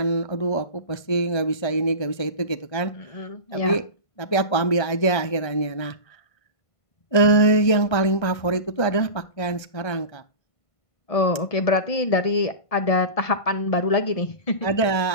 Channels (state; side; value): late; right; 1.3 ms